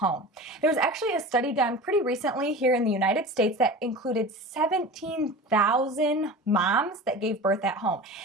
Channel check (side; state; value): both; normal; correlation 0.34